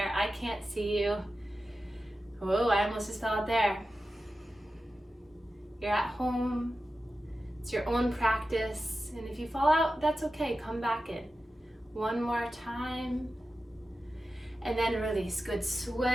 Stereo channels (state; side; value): normal; both; correlation 0.93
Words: I can't see you. Whoa, I almost just fell out there. You're at home. It's your own practice. And if you fall out, that's okay. Come back in. 1 more time. And then release. Good